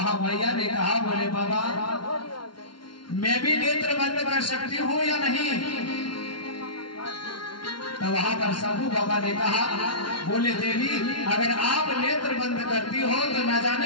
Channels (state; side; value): late; right; 0.72 ms